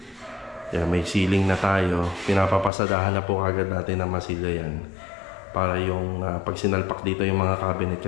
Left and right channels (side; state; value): right; drops out; at 2.7 s